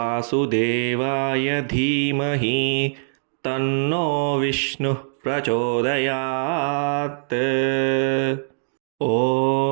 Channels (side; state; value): left; silent; digital silence